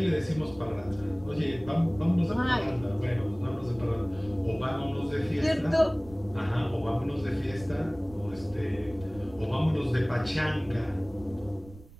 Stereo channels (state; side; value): noise; right; rumble, 19 dB below the sound